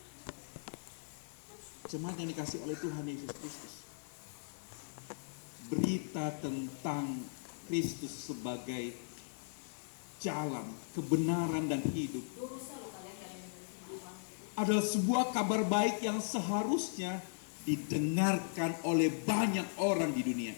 Jemaat yang dikasih oleh Tuhan Yesus Kristus, berita tentang Kristus sebagai jalan, kebenaran dan hidup adalah sebuah kabar baik yang seharusnya didengarkan oleh banyak orang di dunia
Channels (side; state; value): right; silent; digital silence